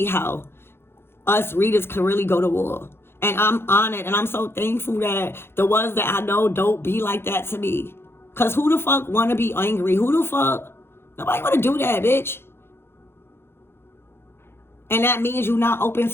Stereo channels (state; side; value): late; right; 0.11 ms